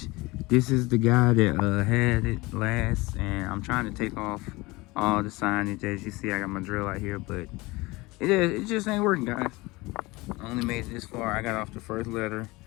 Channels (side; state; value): right; quieter; 22.5 dB